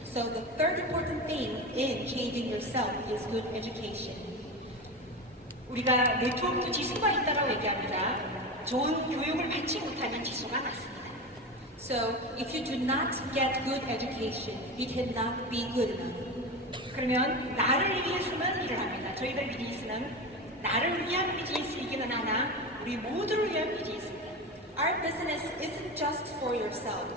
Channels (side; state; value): both; normal; correlation 0.23